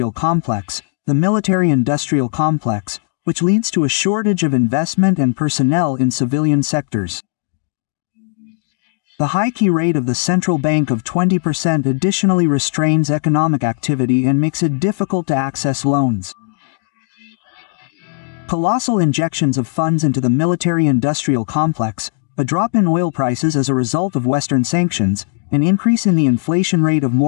complex, which leads to a shortage of investment and personnel in civilian sectors. The high key rate of the central bank of 20% additionally restrains economic activity and makes it difficult to access loans. Colossal injections of funds into the military-industrial complex, a drop in oil prices as a result of Western sanctions, an increase in the inflation rate of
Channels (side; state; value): right; silent; 68 dB below the other